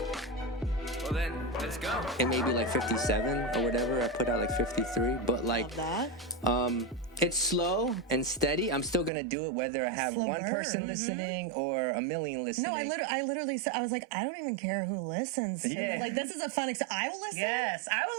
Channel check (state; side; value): drops out; left; at 9.1 s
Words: Well then, let's go. It may be like 57 or whatever. I put out like 53, but like, Love that. it's slow and steady. I'm still gonna do it whether I have Slow one burn. person listening or a million listening. No, I literally said, I was like, I don't even care who listens. Yeah. Like, this is a fun I will listen. Yes, I will